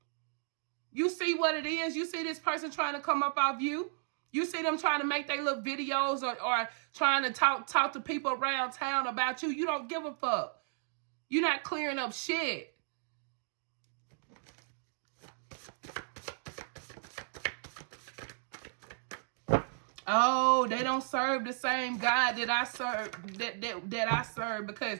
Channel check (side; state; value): left; silent; digital silence